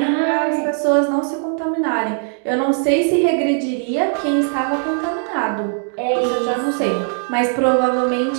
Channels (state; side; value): silent; left; 58 dB below the other